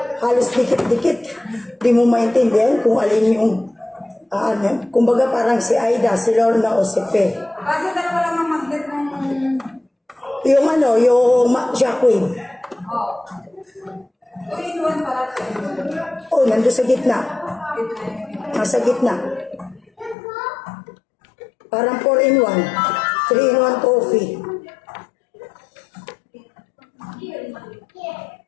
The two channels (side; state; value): right; drops out; at 20.2 s